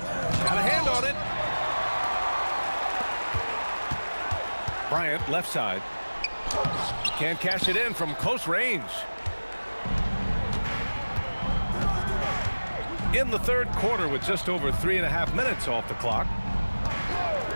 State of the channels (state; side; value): inverted; both; correlation -1.00